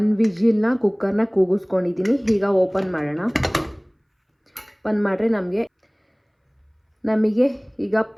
ವಿಜಿಲ್ನ ಕುಕ್ಕರ್ನ ಕೂಗಿಸ್ಕೊಂಡಿದ್ದೀನಿ. ಈಗ ಓಪನ್ ಮಾಡೋಣ. ಓಪನ್ ಮಾಡಿದ್ರೆ ನಮಗೆ ಈಗ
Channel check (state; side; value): identical; both; correlation 1.00